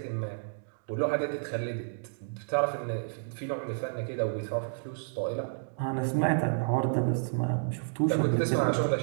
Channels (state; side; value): silent; left; digital silence